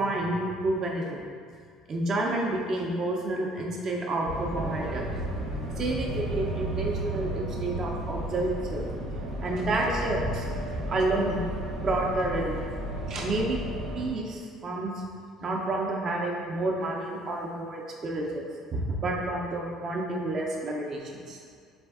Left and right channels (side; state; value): both; normal; correlation 0.60